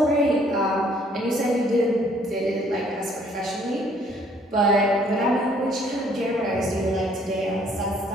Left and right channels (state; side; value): normal; both; correlation 0.62